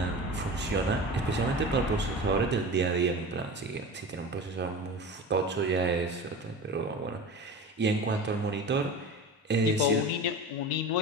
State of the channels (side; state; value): both; normal; correlation 0.32